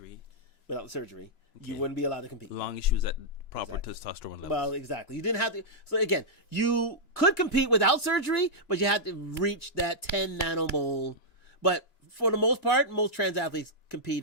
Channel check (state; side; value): late; right; 3.0 ms